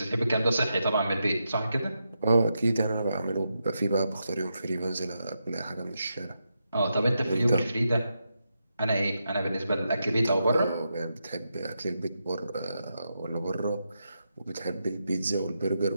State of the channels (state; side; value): inverted; both; correlation -0.85